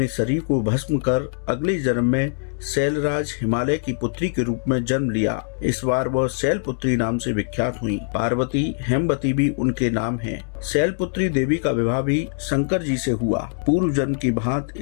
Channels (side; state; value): right; silent; digital silence